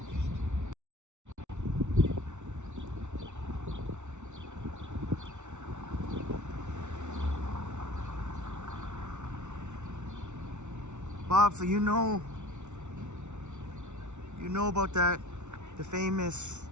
Bob, so you know about that, the famous,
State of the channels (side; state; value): left; late; 0.83 ms